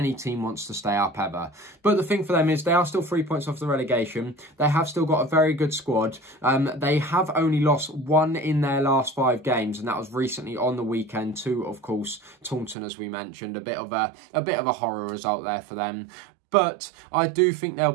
team wants to stay up ever. But the thing for them is they are still 3 points off the relegation. They have still got a very good squad. They have only lost 1 in their last 5 games, and that was recently on the weekend to, of course, Taunton, as we mentioned. A bit of a horror result there for them. But I do think they'll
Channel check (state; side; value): drops out; left; at 12.8 s